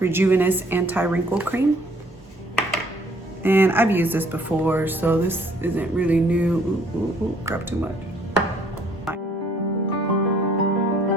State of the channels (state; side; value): normal; both; correlation 0.61